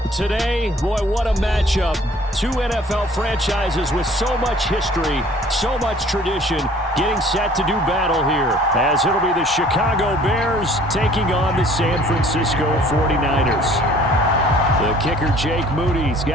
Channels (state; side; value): normal; both; correlation 0.53